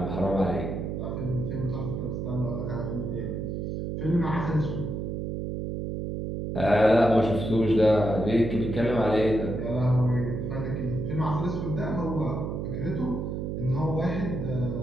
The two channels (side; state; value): right; noise; hum, 3 dB below the sound